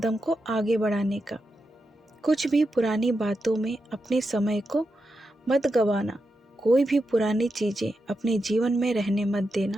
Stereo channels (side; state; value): both; normal; correlation 0.87